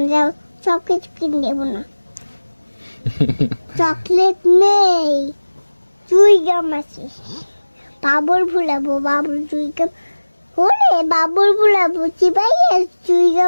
যাও সব কিছু কিনে দেবো না। চকলেট নেই, চুই গাম আছে, বাবুর ভুলাবো, বাবুর চুই গাম ওরে বাবুর ভুলাবো, চিবাই চুই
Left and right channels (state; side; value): inverted; both; correlation -1.00